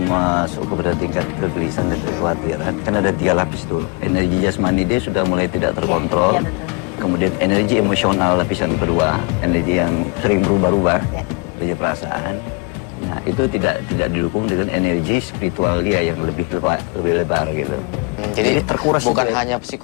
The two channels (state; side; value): quieter; right; 32.7 dB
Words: masuk kepada tingkat kegelisahan dan kekhawatiran. Kan ada 3 lapis tuh. Energi jasmani dia sudah mulai tidak terkontrol. Ya, betul. Kemudian energi emosional lapisan kedua, energi yang sering berubah-ubah, energi perasaan. Nah itu tidak didukung dengan energi spiritual dia yang lebih lebar gitu. Jadi terkuras bukan juga. hanya